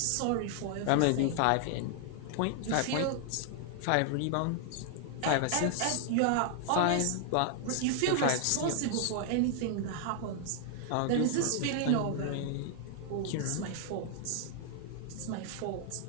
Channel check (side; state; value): both; different; correlation 0.00